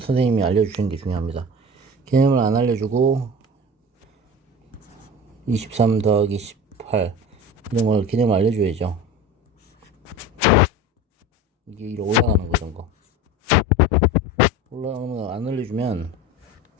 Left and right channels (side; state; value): both; normal; correlation 0.34